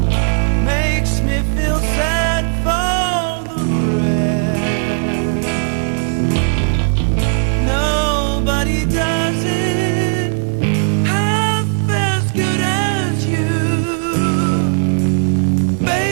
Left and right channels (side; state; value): left; silent; digital silence